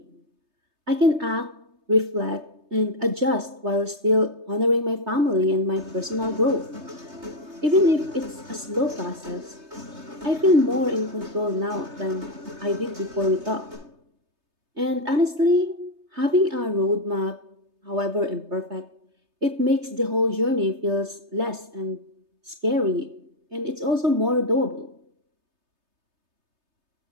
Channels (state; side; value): late; left; 3.3 ms